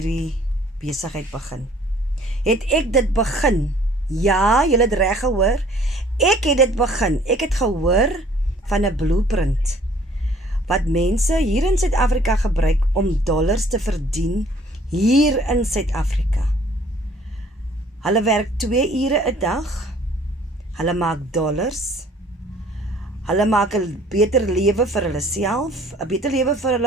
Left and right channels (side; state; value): both; normal; correlation 0.56